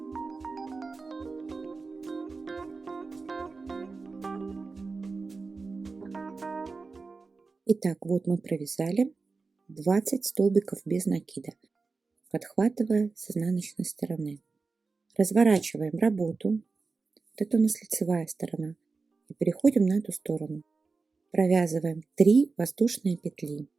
Итак, вот мы провязали 20 столбиков без накида, подхватывая с изнаночной стороны. Разворачиваем работу. Вот это у нас лицевая сторона. И переходим на эту сторону. Провязываем 3 воздушные петли.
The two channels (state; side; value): quieter; left; 4.2 dB